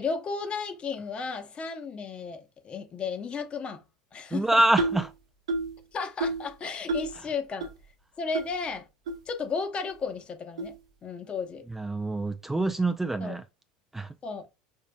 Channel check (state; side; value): normal; both; correlation 0.59